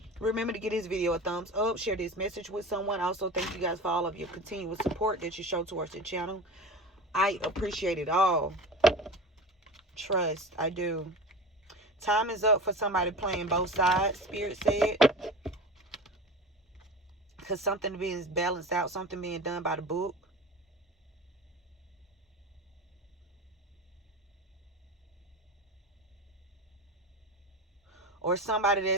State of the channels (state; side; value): normal; both; correlation 0.32